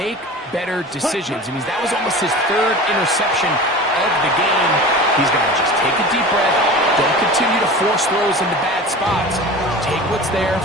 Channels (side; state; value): both; normal; correlation 0.35